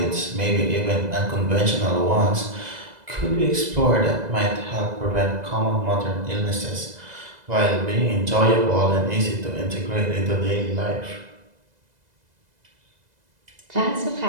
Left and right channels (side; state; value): left; late; 2.0 ms